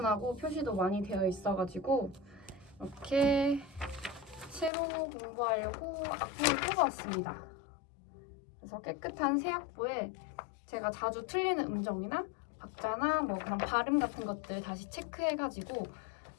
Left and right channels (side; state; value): right; drops out; at 4.7 s